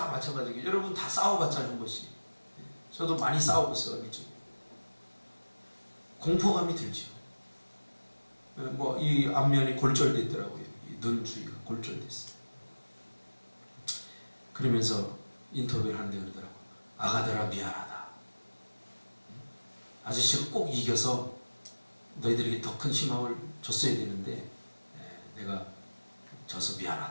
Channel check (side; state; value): both; inverted; correlation -1.00